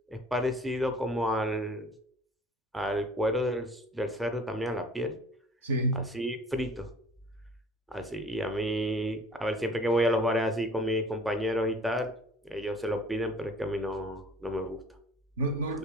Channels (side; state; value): both; normal; correlation 0.48